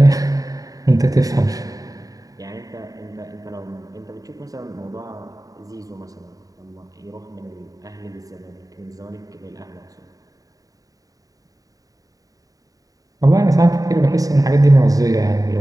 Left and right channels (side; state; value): left; late; 0.17 ms